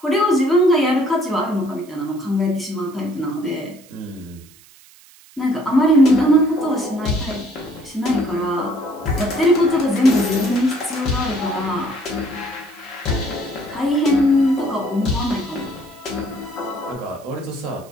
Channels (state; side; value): noise; right; hiss, 25 dB below the sound